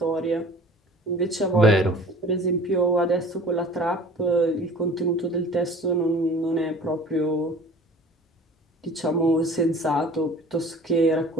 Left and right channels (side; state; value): both; normal; correlation 0.45